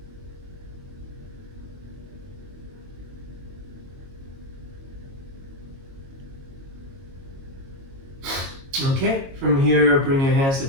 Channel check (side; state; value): left; late; 22 ms